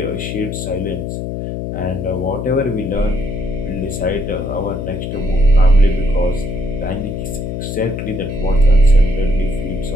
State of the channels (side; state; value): left; noise; hum, 5 dB below the sound